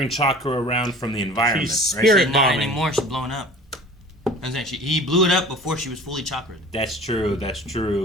chakra around from the environment, She's right? spirit She's not bombing. anymore, she's blowing up. He blew it up before she was fully chakra'd. That's true, that's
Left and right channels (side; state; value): both; normal; correlation 0.44